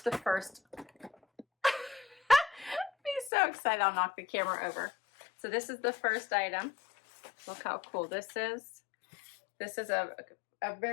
the first. Be so excited, I'll knock the camera over. So this is the first item. Look how cool this is. This is a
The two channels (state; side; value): drops out; right; at 3.3 s